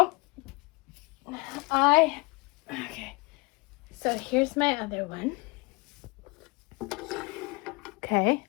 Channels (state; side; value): quieter; right; 26.5 dB